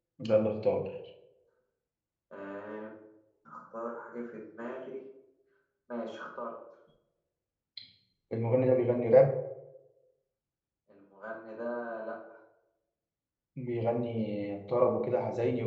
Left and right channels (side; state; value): both; identical; correlation 1.00